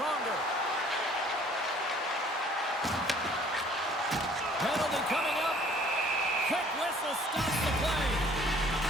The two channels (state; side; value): normal; both; correlation 0.56